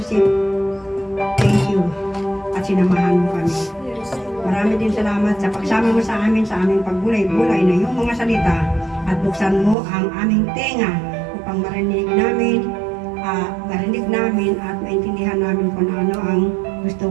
Thank you. At sinamahan mo kami. Marami din salamat sa pagsama mo sa aming pagbulay-bulay na yung mga salita at buksan mo ang aming tenga upang marinig namin at maintindihan namin kung ano ang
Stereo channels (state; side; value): drops out; left; at 9.8 s